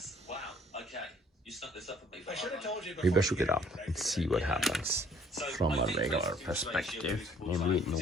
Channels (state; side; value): normal; both; correlation 0.59